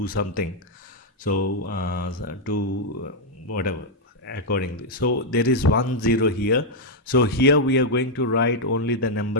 something. So to whatever accordingly. So there is 1 0 here. So here we are going to write only the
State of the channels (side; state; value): both; normal; correlation -0.02